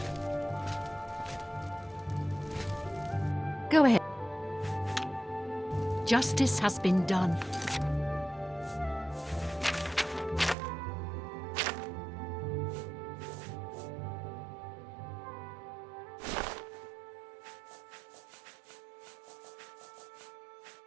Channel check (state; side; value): drops out; left; at 10.6 s